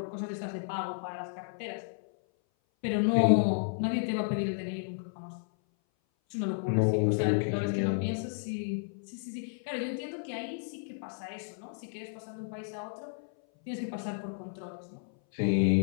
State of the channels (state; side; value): silent; right; 56 dB below the other